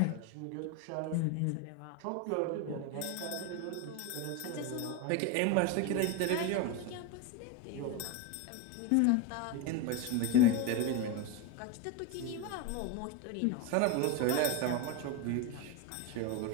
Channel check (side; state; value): both; different; correlation 0.03